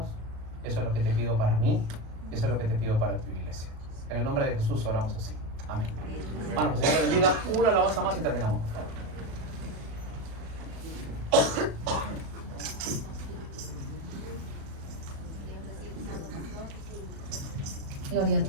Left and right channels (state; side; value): late; left; 37 ms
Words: eso es lo que te pido para mí, eso es lo que te pido para tu iglesia. En el nombre de Jesús oramos así. Amén. Bueno, pues Dios te bendiga. Una alabanza más y terminamos. Gloria a